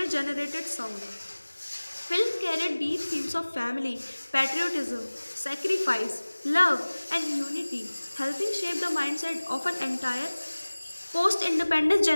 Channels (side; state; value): both; inverted; correlation -1.00